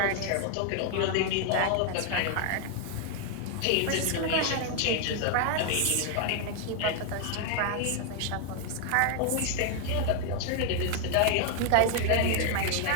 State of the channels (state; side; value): different; both; correlation 0.00